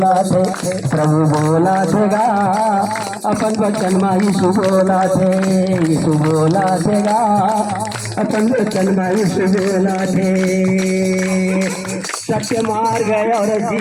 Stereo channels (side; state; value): both; identical; correlation 1.00